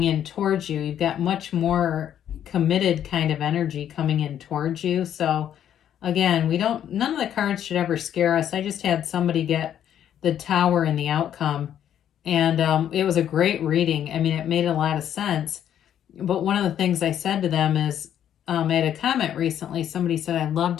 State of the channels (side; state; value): right; quieter; 10.1 dB